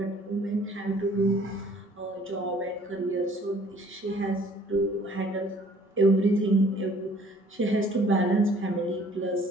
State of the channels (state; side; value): normal; both; correlation 0.56